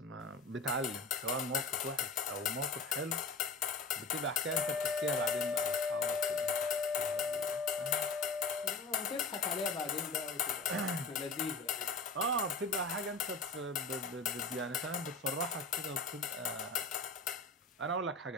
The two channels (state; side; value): quieter; right; 3.7 dB